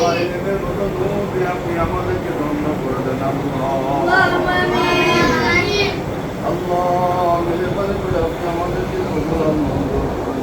ইলমের মতো নূর দিয়ে আপনি আমাদেরকে ধন্য করে দেন আল্লাহ মেহেরবানি করে আপনি আমাদেরকে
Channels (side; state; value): both; identical; correlation 1.00